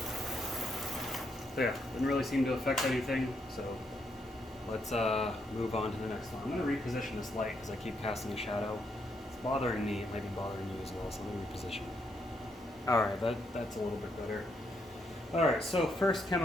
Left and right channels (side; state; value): both; normal; correlation 0.76